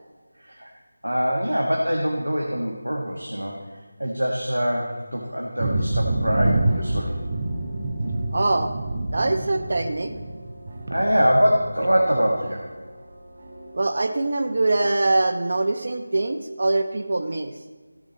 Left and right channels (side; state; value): both; inverted; correlation -0.97